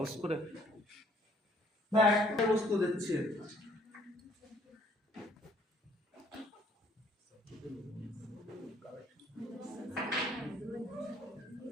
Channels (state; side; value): normal; both; correlation 0.61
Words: করে না, একটা বস্তু দিচ্ছি।